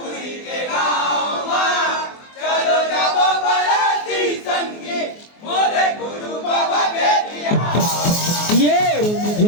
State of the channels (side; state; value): right; late; 24 ms